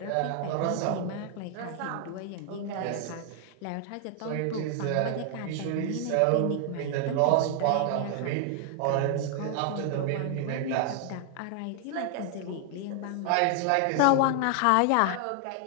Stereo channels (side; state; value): both; different; correlation 0.00